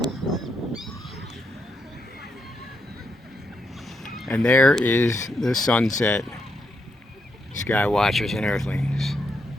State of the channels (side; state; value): both; normal; correlation 0.80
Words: And there is the sunset. Skywatchers and Earthlings.